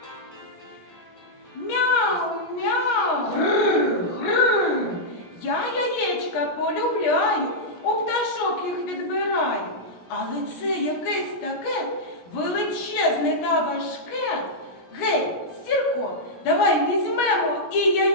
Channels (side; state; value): right; late; 17 ms